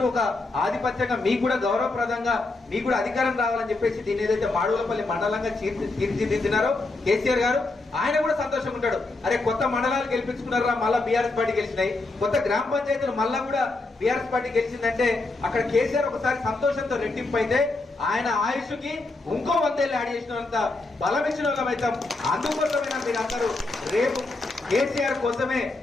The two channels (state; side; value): quieter; right; 3.2 dB